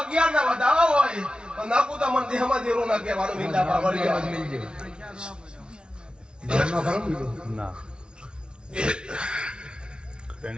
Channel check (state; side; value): late; left; 0.055 ms